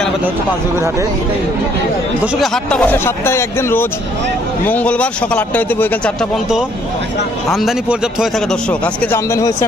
হচ্ছে পাঁচবিবির হাটে। দর্শক এই হাটটা বসে সপ্তাহে একদিন, রোজ মঙ্গলবার সকাল 8টা হইতে বৈকাল 4টা পর্যন্ত। আমদানি পর্যাপ্ত হয়ে থাকে। দর্শক আজকে যে আমদানি হয়েছে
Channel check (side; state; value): both; normal; correlation 0.65